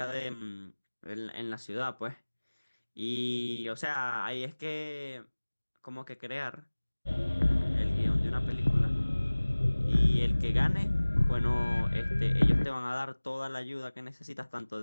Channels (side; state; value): both; inverted; correlation -1.00